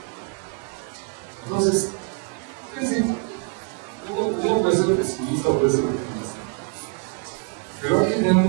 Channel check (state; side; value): quieter; left; 35.8 dB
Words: Entonces, es decir, uno puede ser pesimista o puede ser optimista, pero hay que tener